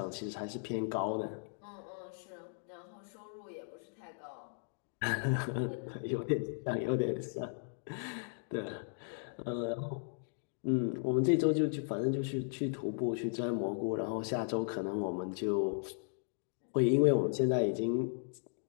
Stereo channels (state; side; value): silent; right; digital silence